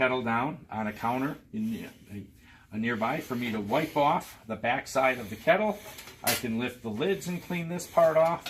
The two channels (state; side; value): identical; both; correlation 1.00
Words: down on a counter nearby for me to wipe off the backside of the kettle, I can lift the lids and clean this part